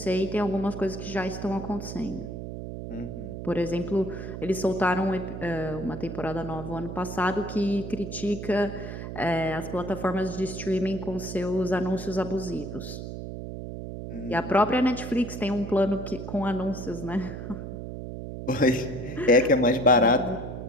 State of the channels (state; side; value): noise; right; hum, 8 dB below the sound